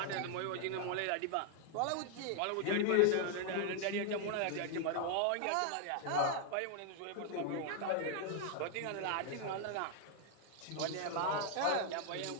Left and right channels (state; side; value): different; both; correlation 0.00